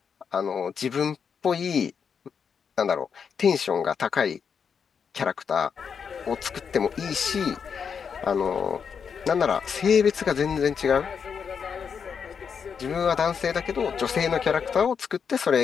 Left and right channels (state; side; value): quieter; right; 6.6 dB